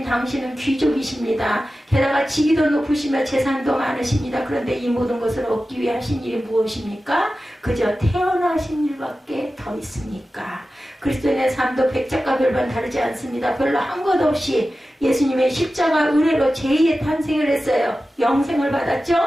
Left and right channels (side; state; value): both; normal; correlation 0.94